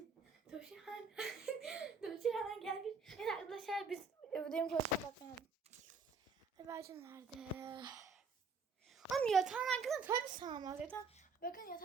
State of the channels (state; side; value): quieter; left; 4.7 dB